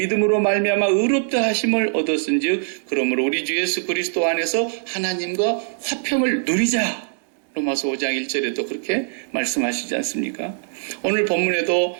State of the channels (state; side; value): silent; left; digital silence